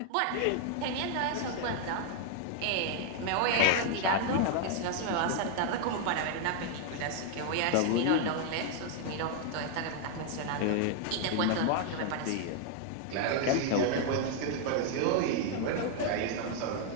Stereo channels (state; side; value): different; both; correlation 0.00